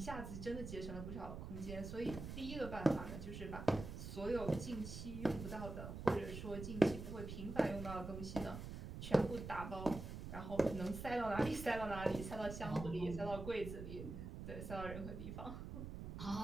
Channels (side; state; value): right; noise; rumble, 8 dB below the sound